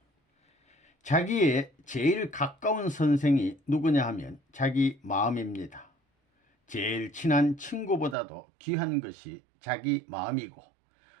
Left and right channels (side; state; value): left; drops out; at 8.2 s